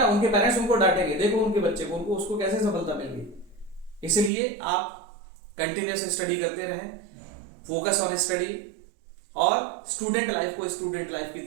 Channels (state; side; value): drops out; left; at 4.3 s